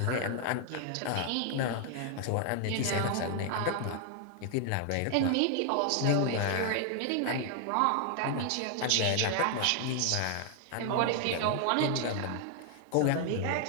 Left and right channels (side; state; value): both; different; correlation 0.00